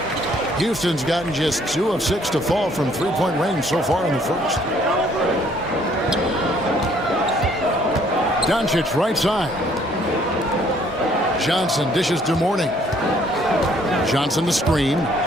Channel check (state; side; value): normal; both; correlation 0.62